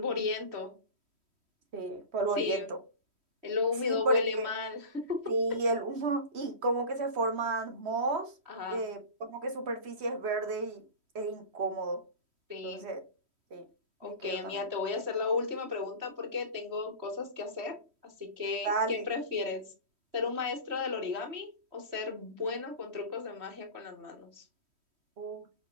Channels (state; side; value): late; left; 3.1 ms